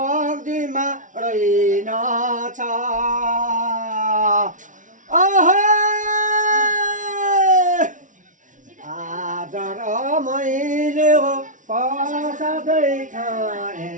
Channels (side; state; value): left; late; 0.37 ms